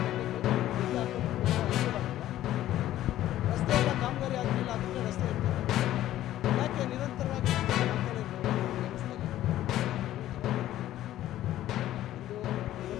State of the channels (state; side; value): quieter; right; 13.5 dB